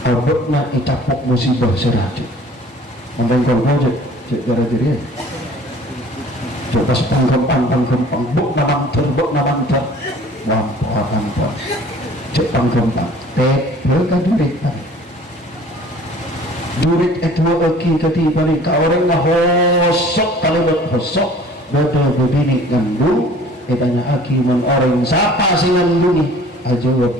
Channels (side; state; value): both; normal; correlation 0.49